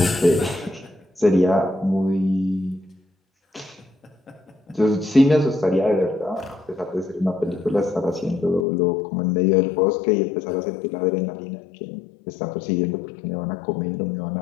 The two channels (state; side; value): drops out; right; at 8.7 s